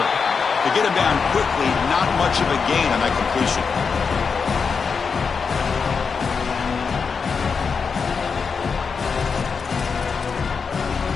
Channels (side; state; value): right; quieter; 5.5 dB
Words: To get him down quickly, not much of a gain on that completion.